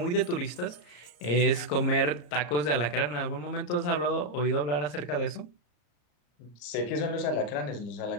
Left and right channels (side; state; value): right; late; 34 ms